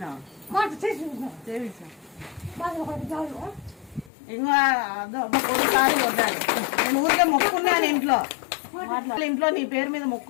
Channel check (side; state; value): right; drops out; at 4.1 s